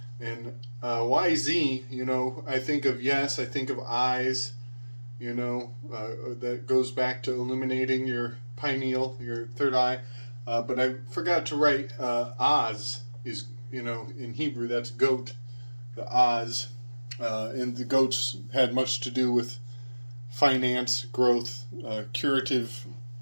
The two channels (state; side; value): inverted; both; correlation -1.00